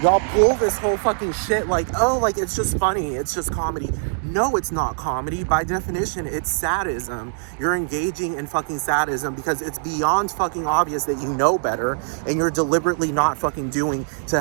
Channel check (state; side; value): silent; left; digital silence